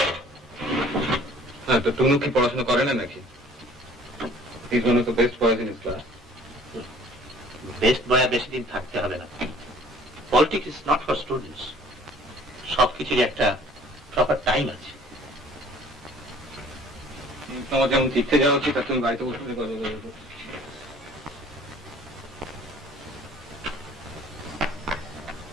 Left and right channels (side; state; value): both; normal; correlation 0.52